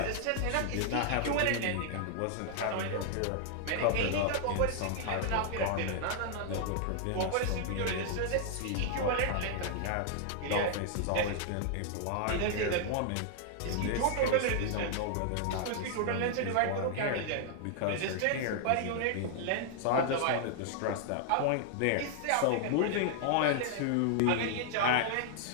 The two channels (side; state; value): both; different; correlation 0.00